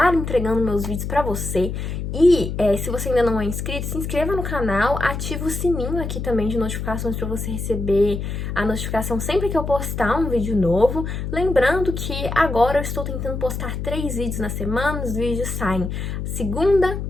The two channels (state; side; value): noise; left; hum, 4 dB below the sound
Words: entregando meus vídeos pra você. E se você ainda não é inscrito, se inscreva no canal, ativa o sininho aqui também de notificações para você receber a notificação sempre que eu postar um vídeo novo. Lembrando que agora eu estou tentando postar 3 vídeos na semana, os vídeos saem segunda,